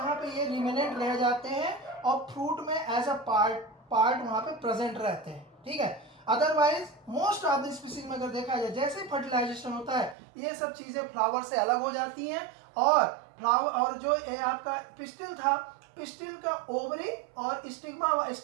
पे ये रिमेनेंट रह जाते हैं और फ्रूट में एज अ पार्ट वहाँ पे प्रेजेंट रहते हैं। ठीक है, otherwise most of the species में अगर देखा जाए जैसे ही फर्टिलाइजेशन होता है ये सब चीज़ें फ्लावर से अलग हो जाती हैं, और फ्लावर और जो ये आपका पिस्टिल था, पिस्टिल का ओवरी और स्टिग्मा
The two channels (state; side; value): drops out; left; at 10.2 s